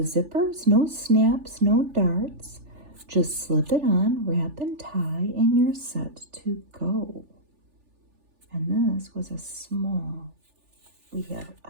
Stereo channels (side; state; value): left; late; 3.4 ms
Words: no snaps, no darts. Just slip it on, wrap and tie, and you're set to go. And this was a small. We have